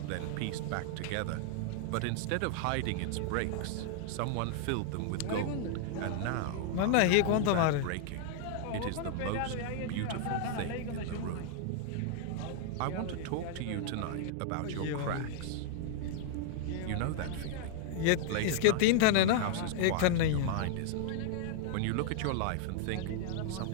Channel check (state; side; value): different; both; correlation 0.00